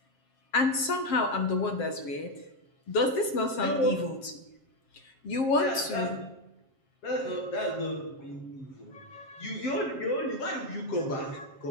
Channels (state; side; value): late; right; 7.5 ms